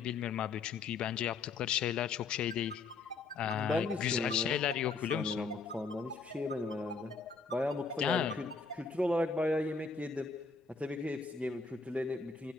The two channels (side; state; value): right; quieter; 4.5 dB